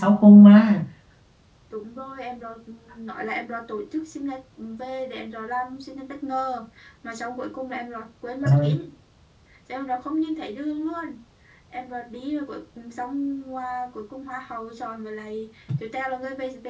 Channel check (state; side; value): identical; both; correlation 1.00